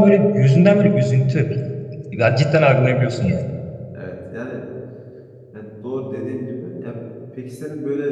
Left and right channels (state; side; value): identical; both; correlation 1.00